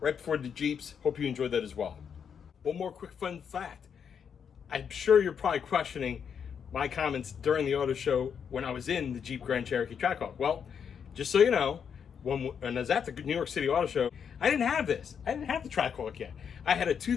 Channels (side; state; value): right; quieter; 7.3 dB